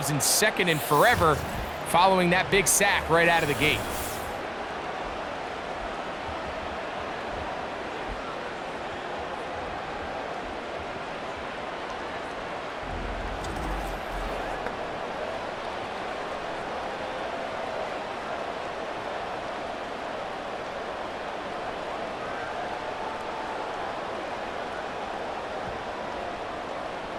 in 2nd and forever following that big sack right out of the gate.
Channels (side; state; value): both; identical; correlation 1.00